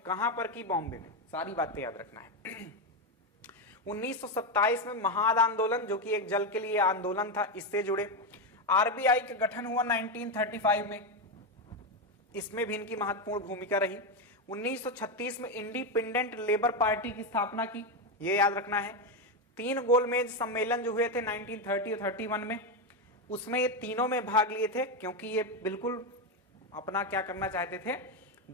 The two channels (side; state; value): both; normal; correlation 0.09